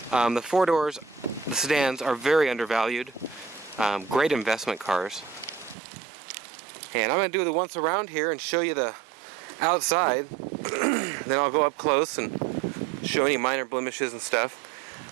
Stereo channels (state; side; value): drops out; left; at 5.8 s